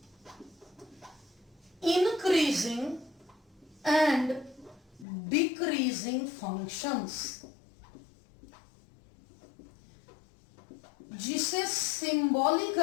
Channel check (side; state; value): right; drops out; at 5.1 s